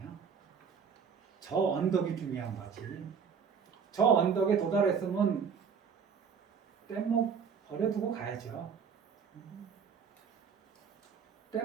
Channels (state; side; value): quieter; left; 6.4 dB